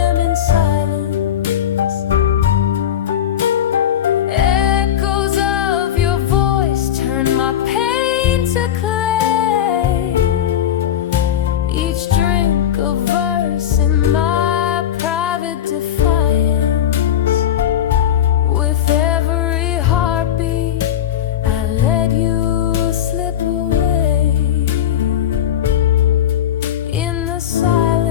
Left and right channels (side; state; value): right; quieter; 10.4 dB